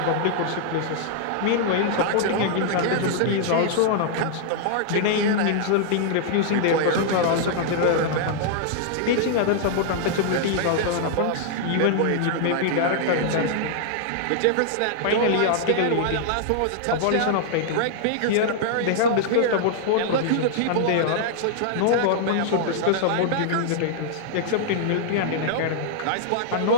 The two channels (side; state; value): both; different; correlation -0.01